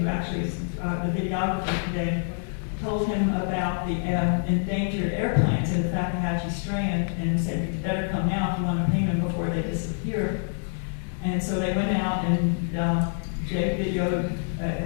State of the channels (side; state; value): right; silent; digital silence